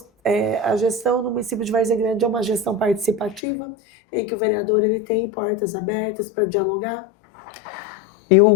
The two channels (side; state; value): right; drops out; at 3.4 s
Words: a gestão no município de Várzea Grande, é uma gestão participativa, em que o vereador ele tem portas abertas para dialogar.